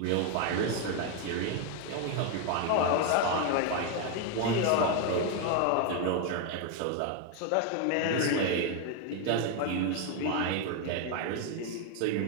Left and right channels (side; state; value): both; different; correlation 0.01